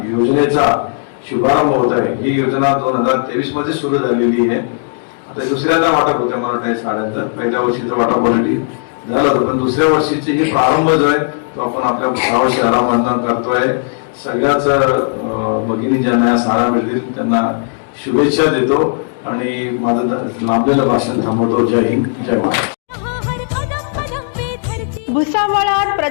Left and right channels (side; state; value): right; silent; digital silence